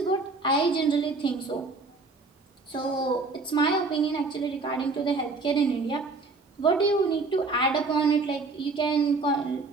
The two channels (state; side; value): quieter; left; 3.8 dB